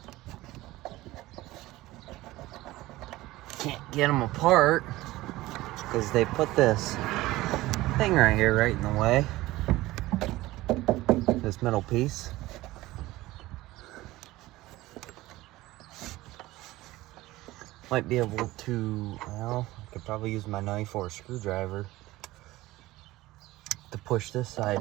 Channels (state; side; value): quieter; left; 17.9 dB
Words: Can't get them apart because they put this thing right here right in the way. This middle piece. Might be able to, well, I could probably use my knife or a screwdriver to push this side